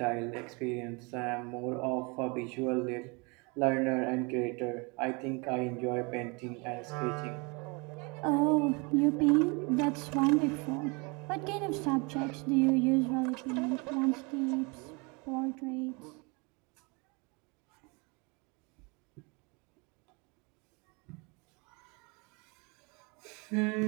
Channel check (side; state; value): left; quieter; 29.9 dB